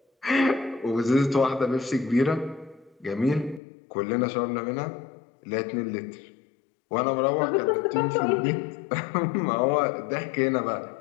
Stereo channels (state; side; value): drops out; right; at 3.6 s